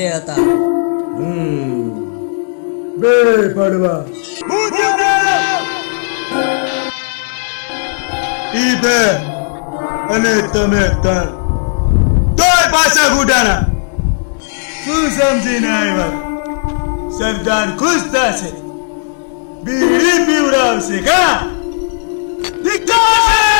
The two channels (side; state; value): right; silent; digital silence